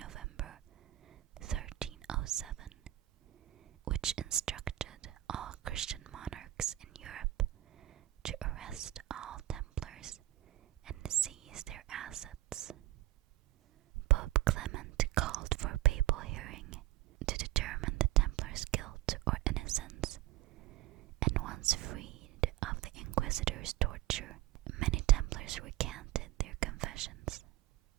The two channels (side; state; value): left; quieter; 15.4 dB